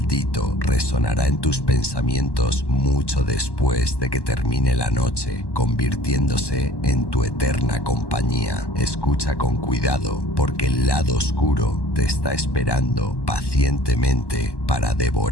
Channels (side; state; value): right; late; 1.1 ms